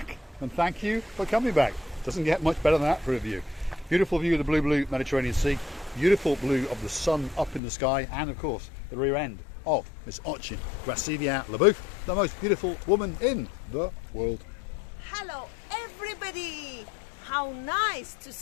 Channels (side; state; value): right; drops out; at 7.6 s